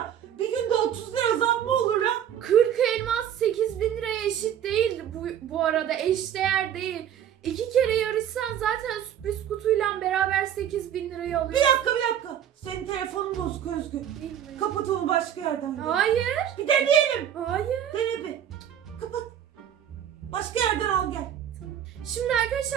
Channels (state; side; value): quieter; left; 9.8 dB